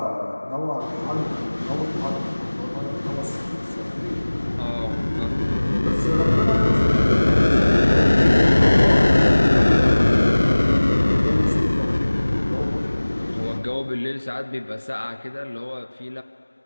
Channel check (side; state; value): both; inverted; correlation -1.00